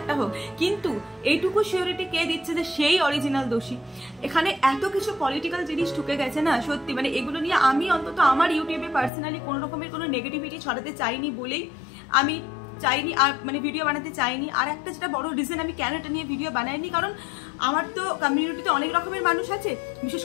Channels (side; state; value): right; drops out; at 9.1 s